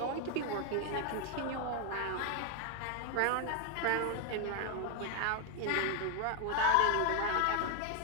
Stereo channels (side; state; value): both; different; correlation 0.01